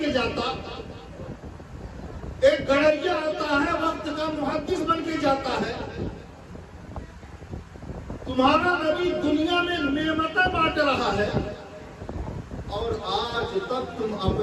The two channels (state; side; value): identical; both; correlation 1.00